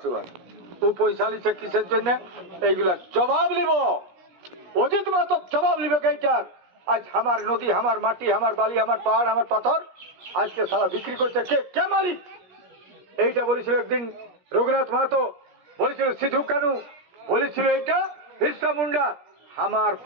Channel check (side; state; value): left; late; 17 ms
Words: ও পয়সা লিছে কিসের জন্য? এইগুলা জবাব নিব, অজিত মাহাতো জবাব নিবে এইটার। আজ আমার নদী, আমার মাটি, আমার বালি, আমার পাহাড়, আমার পাথর আজকে সারা বিক্রি করছে কে? কে মালিক? এইটা বলেছিল একদিন রঘুনাথ মাহাতো, বলেছিল সিধু কানু, বলেছিল এইটা বিরসা মুন্ডা। আমার